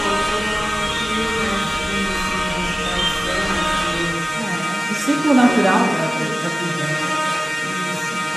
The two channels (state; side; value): normal; both; correlation 0.97